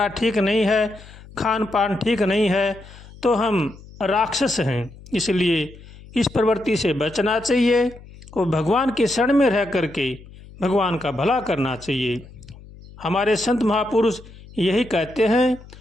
ठीक नहीं है, खान पान ठीक नहीं है तो हम राक्षस हैं। इसलिए इस प्रवृत्ति से बचना चाहिए और भगवान के शरण में रह करके भगवान का भला करना चाहिए। हमारे संत महापुरुष यही कहते हैं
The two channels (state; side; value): noise; left; hum, 20 dB below the sound